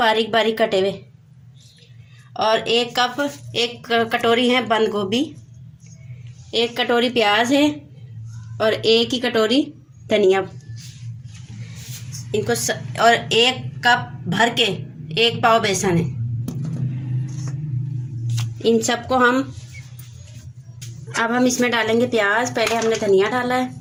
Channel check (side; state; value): both; identical; correlation 1.00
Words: बारीक कटे हुए, और एक कटोरी है बंद गोभी, एक कटोरी प्याज है, और एक ही कटोरी धनिया। और एक कप भर के 1 पाव बेसन है। इन सबको अब हम इसमें डालेंगे प्याज। पहले हमने धनिया डाला है,